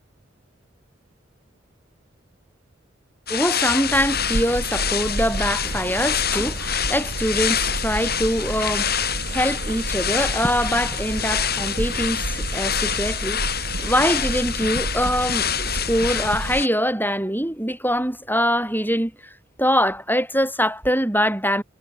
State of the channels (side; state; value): both; normal; correlation 0.61